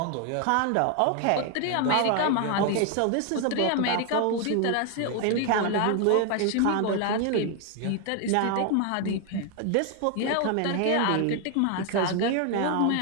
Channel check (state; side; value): different; both; correlation 0.00